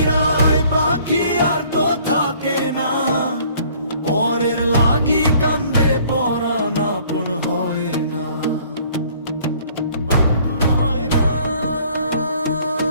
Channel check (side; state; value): both; inverted; correlation -0.57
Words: পাখি আর তো থাকে না, পরের লাগি কান্দে পরাণ আপন হয় না।